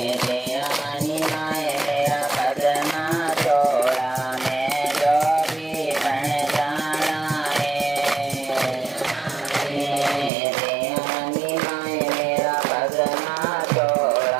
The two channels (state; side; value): drops out; left; at 10.3 s